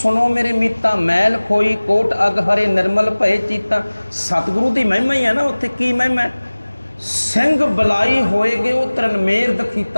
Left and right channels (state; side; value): inverted; both; correlation -1.00